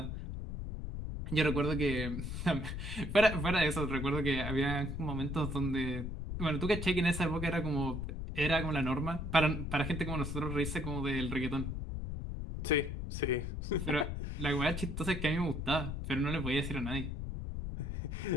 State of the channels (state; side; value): noise; left; rumble, 4 dB below the sound